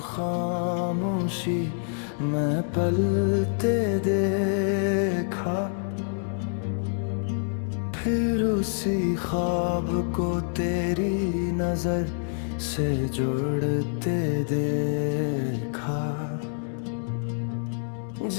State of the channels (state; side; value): silent; right; digital silence